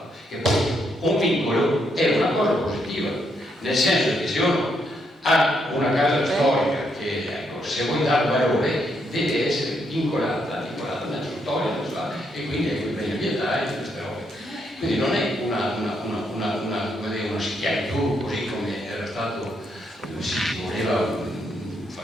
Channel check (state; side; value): normal; both; correlation 0.77